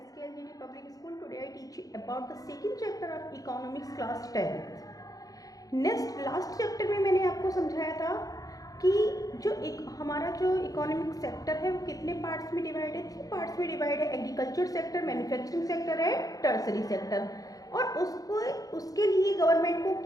Public School. Today I teach you about the second chapter of Economics class 10th. Last chapter में मैंने आपको समझाया था कि हमारा जो economic sector है वो कितने पार्ट्स में डिवाइड है। 3 पार्ट्स में डिवाइड है, एग्रीकल्चर सेक्टर, मैन्युफैक्चरिंग सेक्टर है, टर्सरी सेक्टर। और उसके लिए गवर्नमेंट को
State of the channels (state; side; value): late; right; 0.17 ms